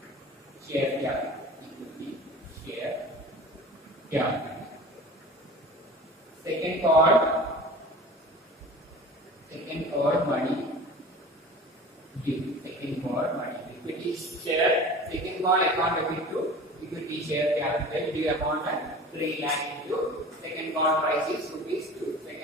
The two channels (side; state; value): both; normal; correlation 0.38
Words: share capital. Second call money due. Second call money equity share. Second call account debit to equity share capital due amount at 3 lakh into second call price is rupees 2.